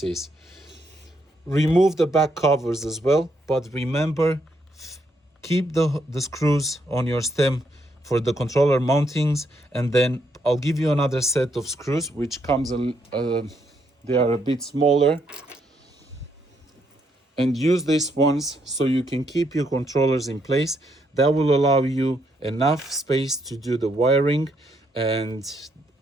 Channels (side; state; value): both; normal; correlation 0.75